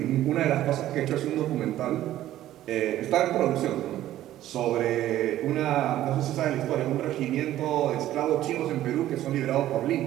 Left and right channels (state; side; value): quieter; left; 13.5 dB